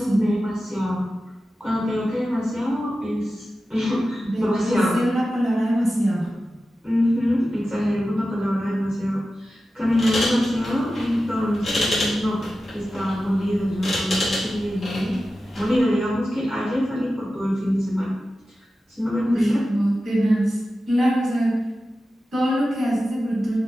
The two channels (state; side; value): normal; both; correlation 0.93